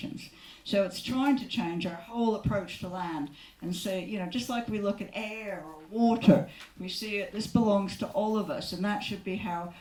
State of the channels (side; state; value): both; identical; correlation 1.00